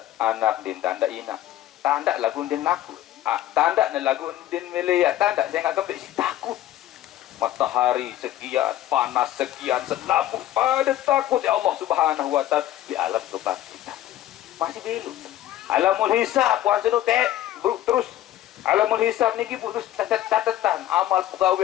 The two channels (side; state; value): right; quieter; 13.4 dB